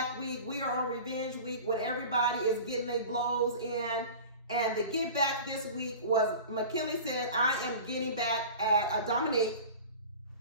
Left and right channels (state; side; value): inverted; both; correlation -0.37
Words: Week. We are on Revenge Week when everybody is getting their blows in. And the Get Back this week was Mackinley said, I am getting back at Domynique